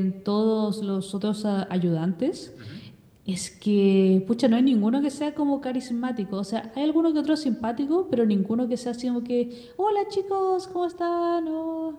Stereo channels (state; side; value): identical; both; correlation 1.00